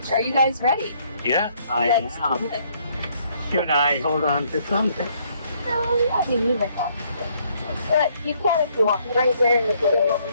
Are you guys ready? Yeah, I Let's am. do it. Should I hold on to something? No, yeah, you need it. But you can if you want, right there in the middle.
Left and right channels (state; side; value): inverted; both; correlation -0.67